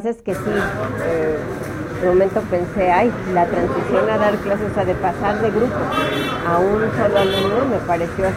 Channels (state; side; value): identical; both; correlation 1.00